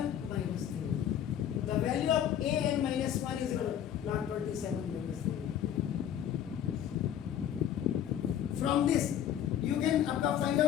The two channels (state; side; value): quieter; right; 10.0 dB